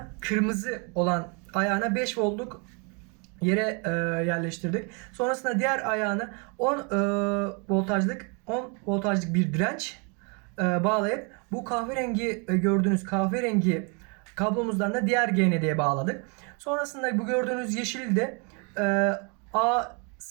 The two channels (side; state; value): left; quieter; 34.7 dB